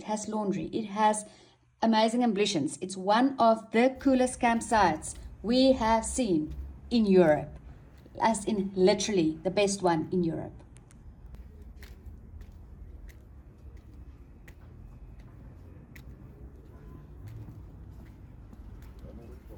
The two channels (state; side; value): identical; both; correlation 1.00